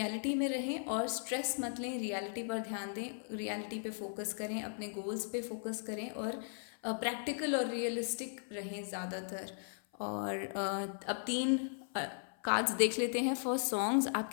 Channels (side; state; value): right; silent; 53 dB below the other